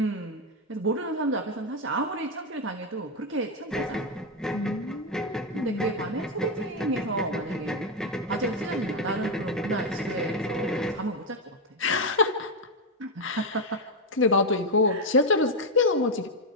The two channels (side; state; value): both; normal; correlation 0.06